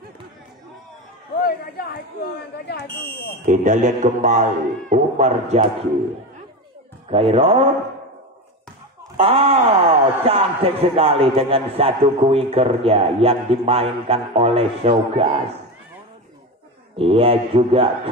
Kita lihat kembali Umar Jaki. Khairul Oh, cantik sekali dengan satu kuikernya yang dimainkan oleh Sogas. Ia juga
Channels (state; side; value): normal; both; correlation 0.20